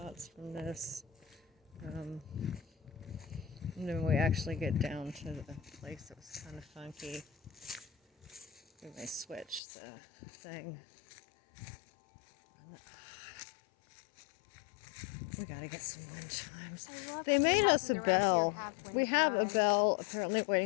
from this. And then we actually get down to the place that was kind of funky. We may switch the thing. We gotta get some wind chimes. They made us a bell. We have a bell apparently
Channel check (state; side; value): drops out; right; at 9.6 s